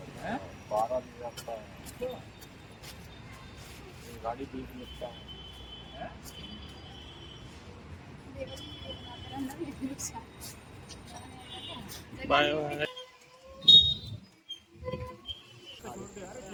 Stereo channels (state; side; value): identical; both; correlation 1.00